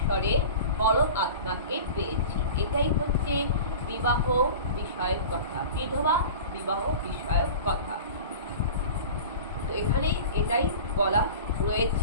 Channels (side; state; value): both; inverted; correlation -0.36